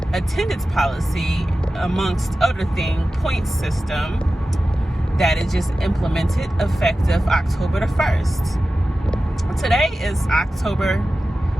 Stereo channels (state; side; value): normal; both; correlation 0.94